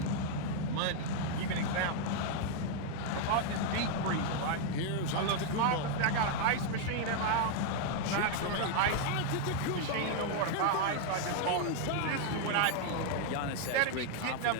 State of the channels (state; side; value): different; both; correlation 0.00